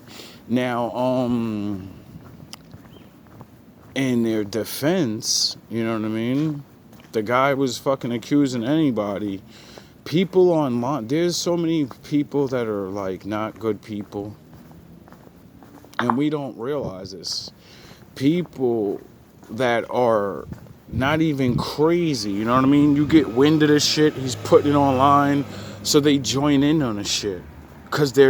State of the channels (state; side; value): identical; both; correlation 1.00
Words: Now, in their defense, you know what I mean? The guy was fucking accusing anybody. People online, there's so many people that are like not good people. And we don't realize this. People that are not even crazy, you know what I mean? You get wind of this shit, he's putting it online, so they join in on the shit. Because